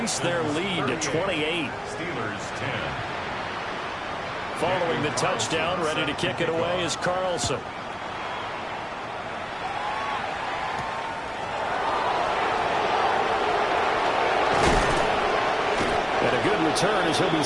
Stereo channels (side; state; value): both; identical; correlation 1.00